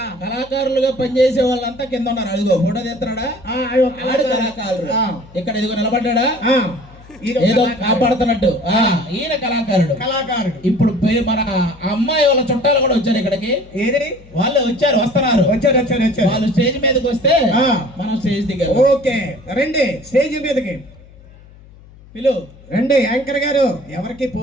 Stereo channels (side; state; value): left; noise; hum, 23 dB below the sound